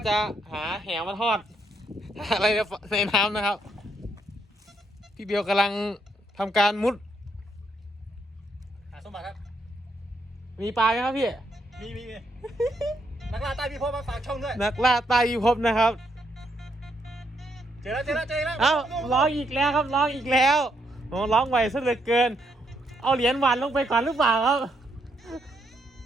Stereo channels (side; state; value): both; normal; correlation 0.76